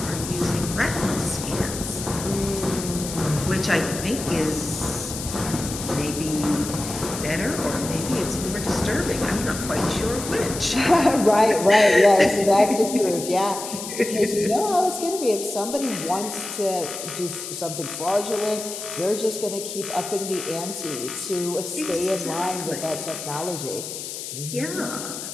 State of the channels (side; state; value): left; noise; hiss, 8 dB below the sound